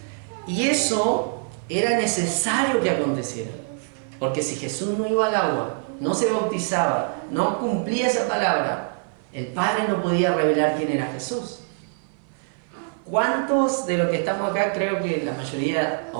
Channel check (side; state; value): left; silent; 55 dB below the other